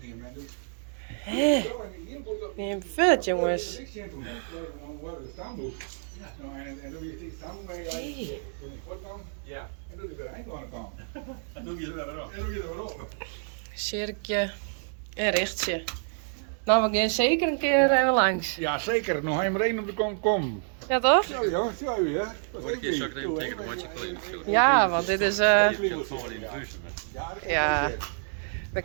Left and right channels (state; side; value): silent; left; 59 dB below the other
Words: niet meer. Hé. Neem vet, jongens. En dan je het staan mee. Ja. En doe je weer eind aan de kant. En doe je er weer op. Sjerkje en Richtje. Nou, we gaan zeker een keer even langs. Ja, zeker. Nog helemaal één op de kant komen. Ja, toch? Ja, ja, zo hè. Ja, want dit is... Ja, we